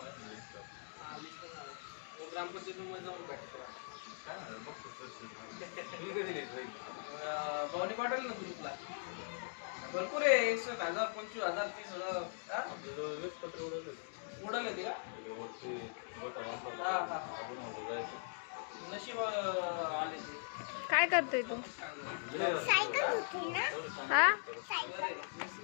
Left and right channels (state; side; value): silent; right; digital silence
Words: ग्रामपंचायतीमध्ये जाऊन भेटतो भावनी पाठवली ना ग्रुपला भरपूर आहे 61,000 25,000 30,000 पत्र उडवले होते का नशीब आले ते काय करतोय तू सायकल होती ना हा